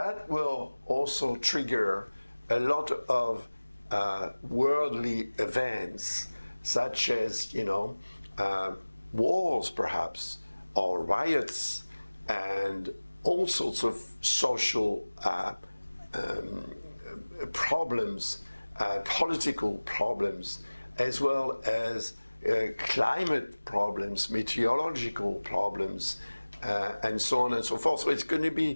will also trigger a lot of worldly events, such as, wars perhaps, or riots, and all sorts of social problems, political problems, as well as climate problems, meteorological problems, and so on and so forth. So it's going to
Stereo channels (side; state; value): both; inverted; correlation -1.00